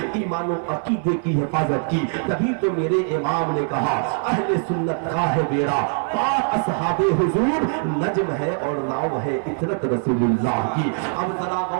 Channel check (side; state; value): left; silent; 58 dB below the other